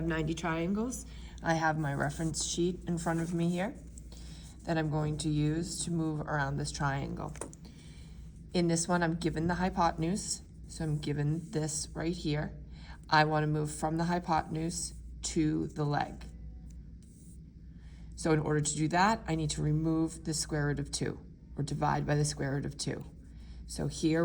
90 triangles. I have my reference sheet in front of me here that I'm going to use to move around this triangle. In this one, I'm given the hypotenuse, so I'm given this right here. I want to move from the hypotenuse to the leg. So in order to do that, I need to remove the square root of 2, or divide by the square root of 2. So here,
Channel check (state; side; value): identical; both; correlation 1.00